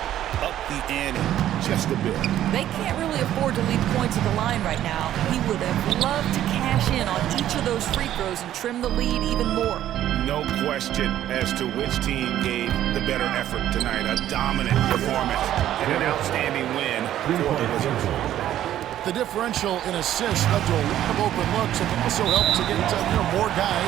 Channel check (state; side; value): quieter; left; 12.1 dB